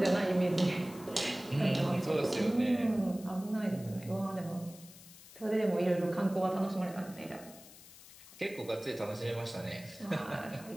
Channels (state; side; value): noise; left; hiss, 19 dB below the sound